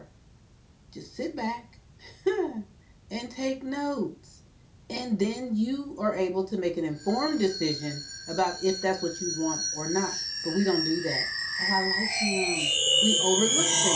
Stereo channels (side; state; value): both; identical; correlation 1.00